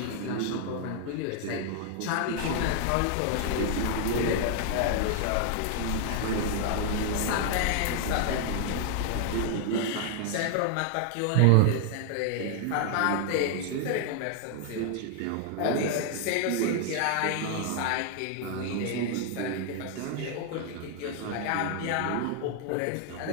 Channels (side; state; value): both; different; correlation 0.00